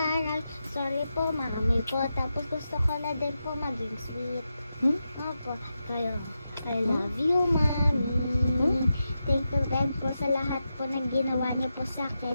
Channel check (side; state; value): both; inverted; correlation -0.88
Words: Sorry po, mami po. Tapos gusto ko na din po maging sweet. Opo, I love you, mami. Thank you din po sa lahat po ng ginawa niyo po sa akin.